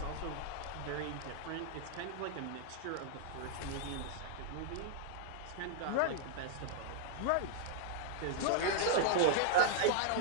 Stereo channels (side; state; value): both; different; correlation -0.01